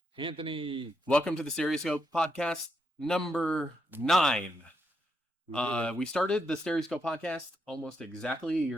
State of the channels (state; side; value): normal; both; correlation 0.81